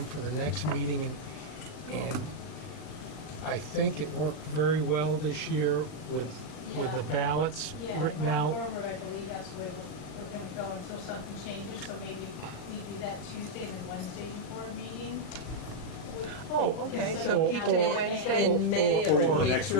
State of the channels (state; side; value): late; right; 39 ms